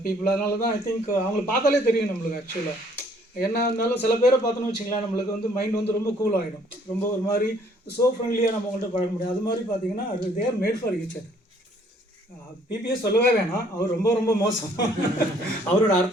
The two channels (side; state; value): both; normal; correlation 0.62